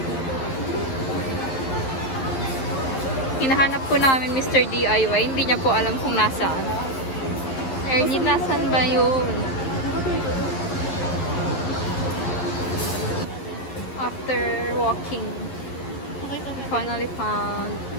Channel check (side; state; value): right; late; 11 ms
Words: Hinahanap po namin Mr. DIY. Hindi niya po alam kung nasaan. Ernie, nasaan ba yun? After walking, we finally found